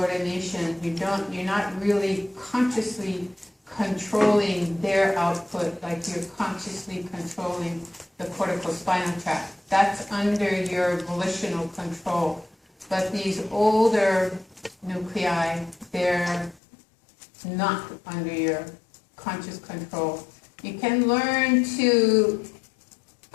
You're not really consciously controlling their output like you're consciously controlling the corticospinal tract. That's under your volitional control. But these older nuclei, they're not under your conscious control. You can learn to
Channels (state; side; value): drops out; right; at 16.6 s